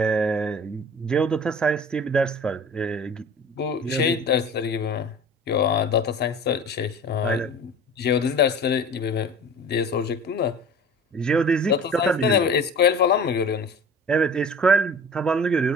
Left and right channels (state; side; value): normal; both; correlation 0.41